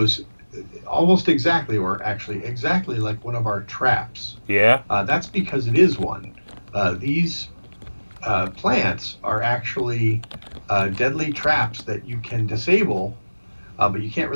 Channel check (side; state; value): both; inverted; correlation -1.00